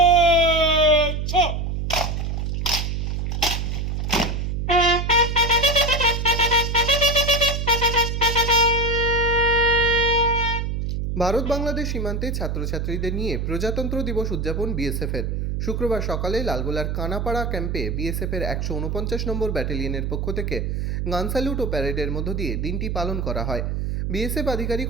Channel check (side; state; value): right; noise; hum, 1 dB below the sound